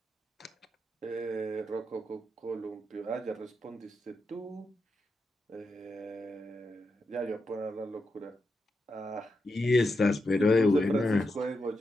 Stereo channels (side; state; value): both; normal; correlation 0.86